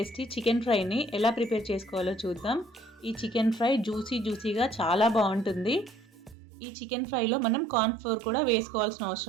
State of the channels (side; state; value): left; drops out; at 6.4 s